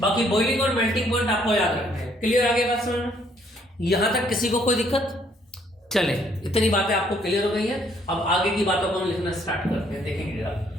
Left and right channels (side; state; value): both; normal; correlation 0.66